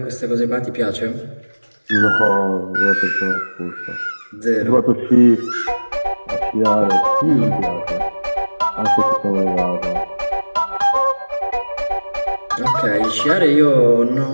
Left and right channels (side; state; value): both; inverted; correlation -1.00